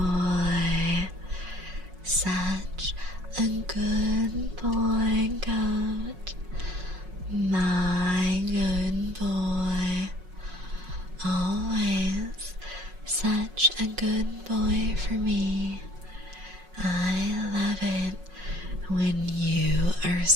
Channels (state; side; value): late; left; 5.5 ms